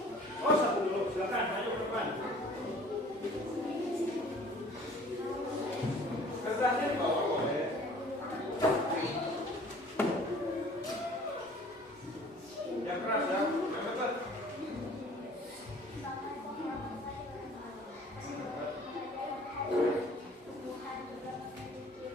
Oh, 1 dulu, silakan, ayo ke depan. Kertasnya di bawah boleh. Yang keras ya, yang dekat.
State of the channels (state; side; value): normal; both; correlation 0.50